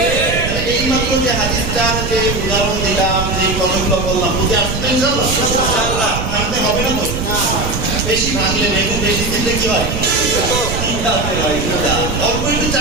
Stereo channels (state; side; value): noise; right; rumble, 4 dB below the sound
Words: এই মাত্র যে হাদিসটার যে উদাহরণ দিলাম, যে কথাগুলো বললাম, বুঝে আসতে ইনশাআল্লাহ ভাঙতে হবে না তো? বেশি ভাঙলে বেগুন বেশি দিলে কি হয়? অল্প একটু